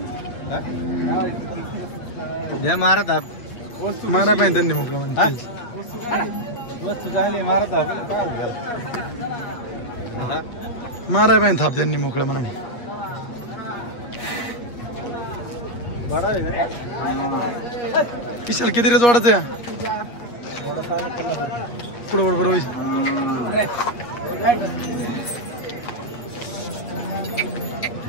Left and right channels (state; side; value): late; right; 8.4 ms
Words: मारत मारा पाहिजे त्यांनी मोकळं म्हणजे. वस्तू झाली मारत माराय पाहिजे थाप त्यांनी मोकळं म्हणून. विशाल किती रेच वाढत आहे? पुढं बरोबर होईल.